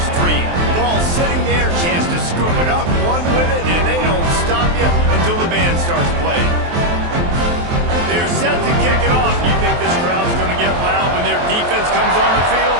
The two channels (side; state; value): left; late; 23 ms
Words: dream. Ball sitting there, chance to scoop it up, run with it, and they don't stop you until the band starts playing. They're set to kick it off. You think this crowd's going to get loud when their defense comes on the